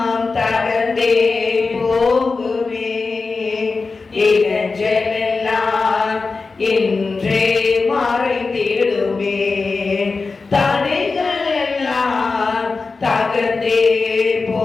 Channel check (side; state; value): right; quieter; 4.2 dB